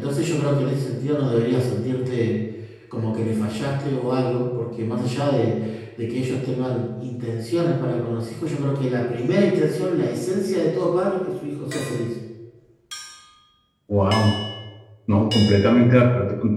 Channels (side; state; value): both; identical; correlation 1.00